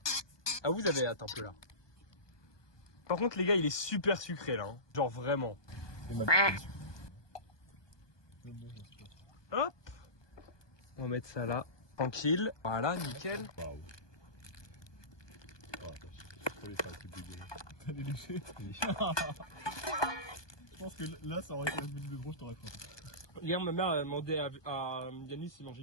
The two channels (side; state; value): right; late; 1.2 ms